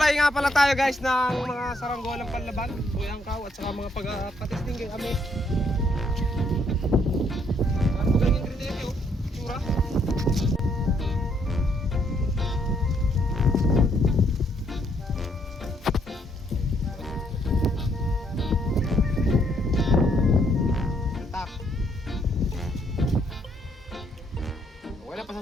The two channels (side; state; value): both; normal; correlation 0.70